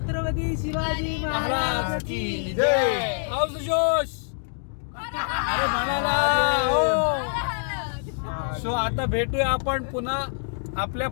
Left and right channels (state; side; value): silent; right; digital silence